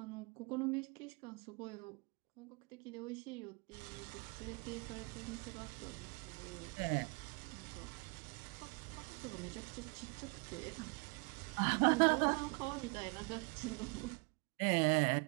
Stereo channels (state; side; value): quieter; left; 32.1 dB